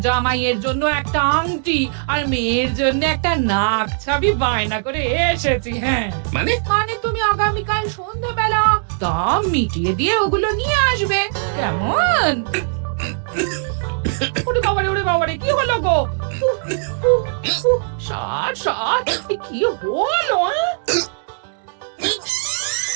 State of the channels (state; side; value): silent; left; 66 dB below the other